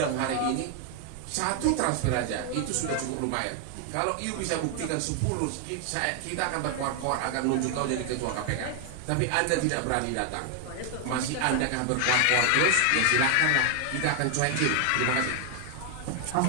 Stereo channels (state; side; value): different; both; correlation 0.00